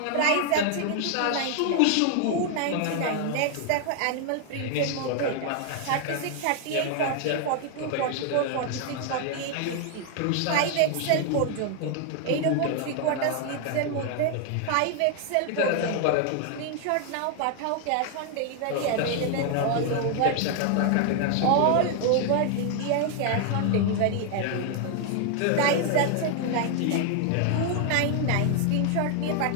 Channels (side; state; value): both; different; correlation 0.00